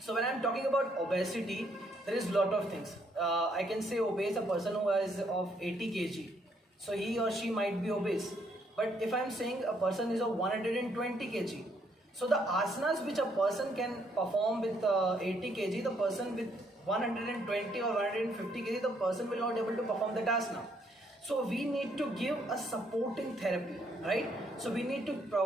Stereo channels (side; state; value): both; normal; correlation 0.71